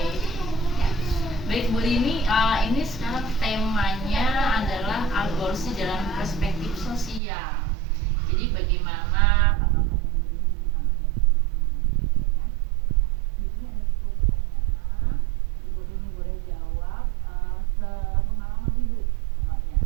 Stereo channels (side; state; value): left; drops out; at 7.2 s